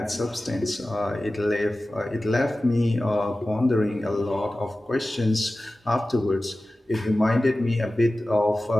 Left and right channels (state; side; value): normal; both; correlation 0.96